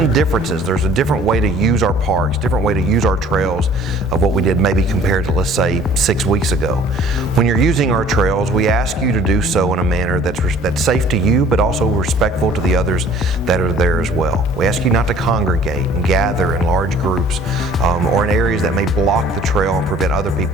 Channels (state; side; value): normal; both; correlation 0.52